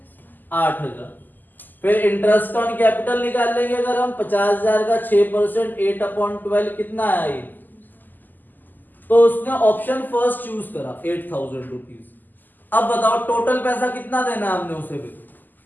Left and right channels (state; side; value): late; right; 0.087 ms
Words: 8,000। फिर इंटरेस्ट ऑन कैपिटल निकाल लेंगे अगर हम 50,000 का 6% 8/12 कितना आया ये? तो उसने ऑप्शन फर्स्ट चूज करा 8,000 रुपीज। अब बताओ टोटल पैसा कितना देना है हमने उसे? भी